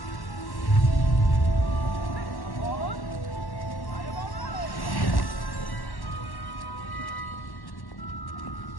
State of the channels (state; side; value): late; right; 1.1 ms